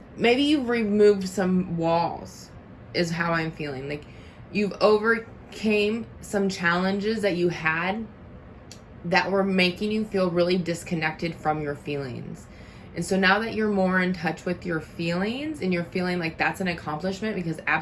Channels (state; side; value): identical; both; correlation 1.00